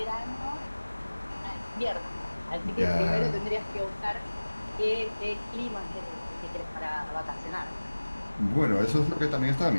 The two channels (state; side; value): inverted; both; correlation -1.00